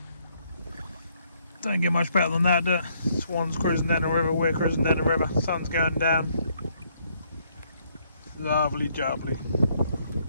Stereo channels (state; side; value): inverted; both; correlation -0.70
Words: Don't get much better than that, do it? Swan's cruising down the river, we're cruising down the river, sun's going down. Lovely jubbly.